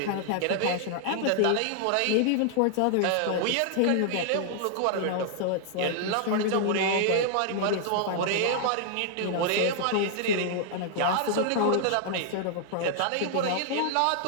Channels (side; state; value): both; different; correlation 0.00